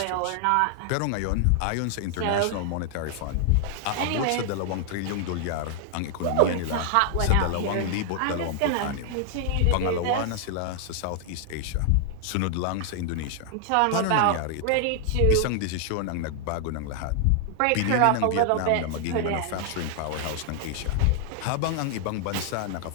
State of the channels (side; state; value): both; different; correlation 0.00